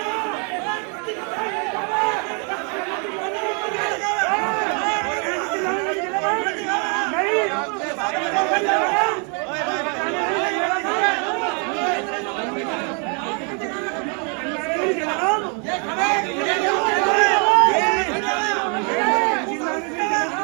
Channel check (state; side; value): quieter; left; 37.4 dB